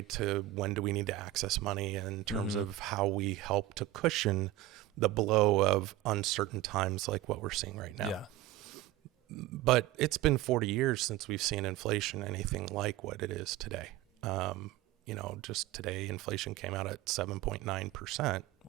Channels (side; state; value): left; quieter; 14.9 dB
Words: to when do we need to access money in terms of how we help to cushion the blow of uncertain times like what we're seeing right now. Yeah. But it's been 40 years since we've seen inflation anything like what it is today. Just today, inflation came out at 7.9%.